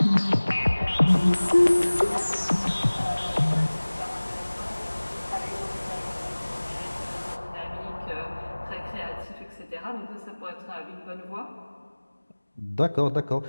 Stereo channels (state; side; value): inverted; both; correlation -1.00